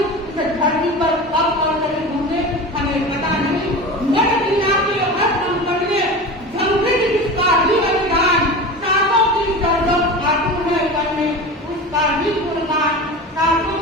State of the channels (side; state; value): both; normal; correlation 0.30